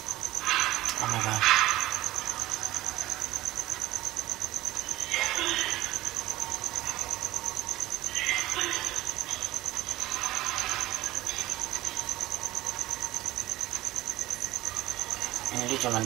oh my god. Ini dia cuma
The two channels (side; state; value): left; quieter; 16.8 dB